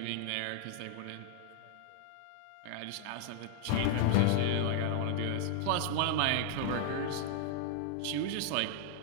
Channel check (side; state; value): both; different; correlation 0.00